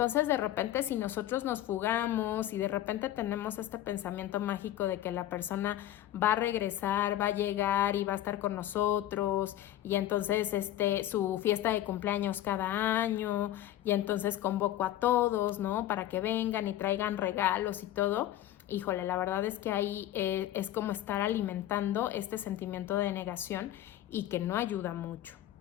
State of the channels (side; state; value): right; quieter; 13.2 dB